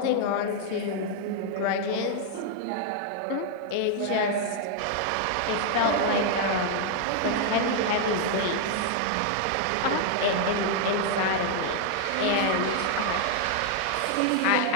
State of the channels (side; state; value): both; different; correlation 0.00